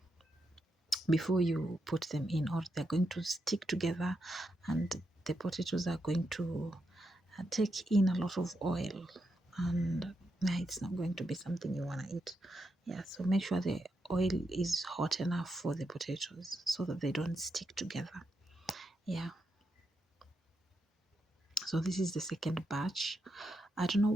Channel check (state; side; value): normal; both; correlation 0.83